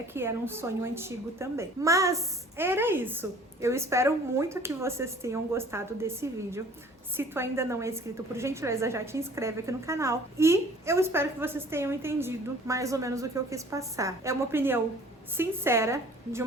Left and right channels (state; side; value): normal; both; correlation 0.51